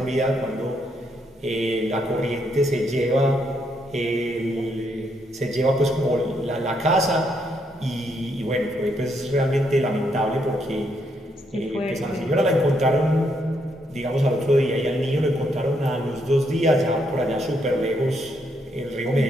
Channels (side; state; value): both; normal; correlation 0.75